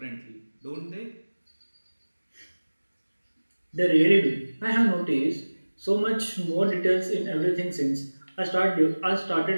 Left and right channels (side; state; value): both; inverted; correlation -1.00